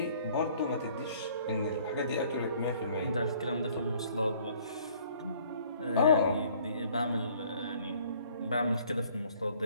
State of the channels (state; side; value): inverted; both; correlation -0.58